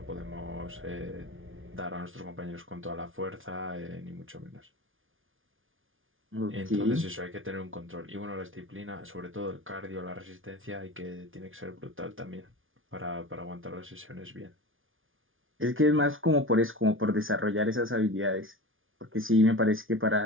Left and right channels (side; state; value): left; late; 0.58 ms